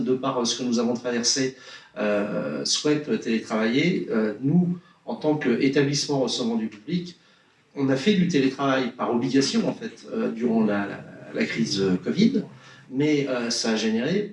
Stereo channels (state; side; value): identical; both; correlation 1.00